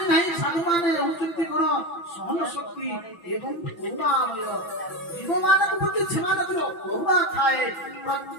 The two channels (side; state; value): right; late; 5.9 ms